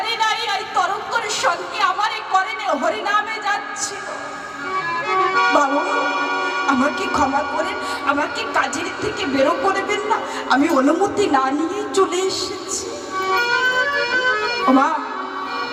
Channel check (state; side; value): identical; both; correlation 1.00